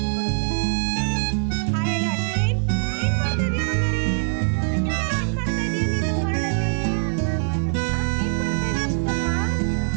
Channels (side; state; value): left; silent; digital silence